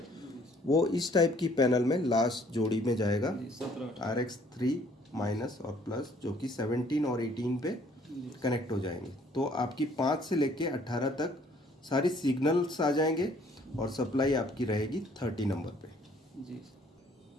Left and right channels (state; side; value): normal; both; correlation 0.60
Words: वो इस टाइप की पैनल में लास्ट जोड़ी में जाएगा RX 3 माइनस और प्लस, जो कि 17 और 18 पे कनेक्ट हो जाएंगे। तो आपकी 5 से लेके 18 तक सारी सिग्नल्स आ जाएंगे और सप्लाई आपकी रहेगी 30 नंबर पे जी।